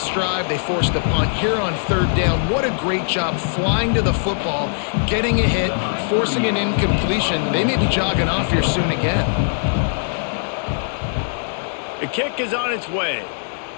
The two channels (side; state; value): right; silent; 65 dB below the other